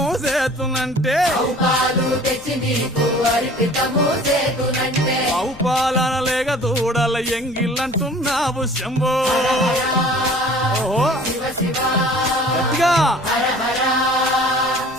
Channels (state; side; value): noise; left; rumble, 21 dB below the sound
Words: చేతునంటే పాలు తెచ్చి నీకు అర్పితము చేతునంటే ఆవు పాలన లేక దూడల ఎంగిలంటున్నావు శంభో ఓహో శివ శివ గట్టిగా హర హర